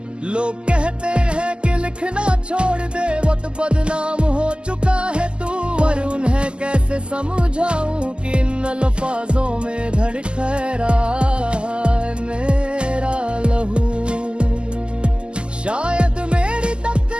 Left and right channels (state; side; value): late; left; 0.050 ms